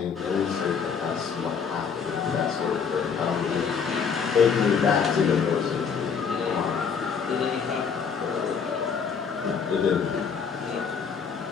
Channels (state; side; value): quieter; right; 6.3 dB